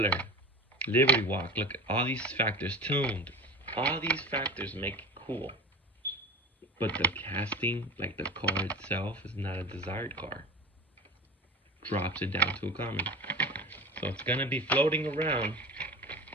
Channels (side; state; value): both; normal; correlation 0.33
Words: Liberty Walk, look at all these factors. Tuned, all these factors make it cool, but the casting, like the car itself, is not a desired car. Drops it down to a common, so it's gonna be floating around.